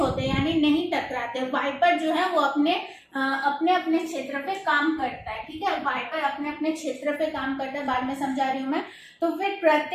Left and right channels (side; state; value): both; identical; correlation 1.00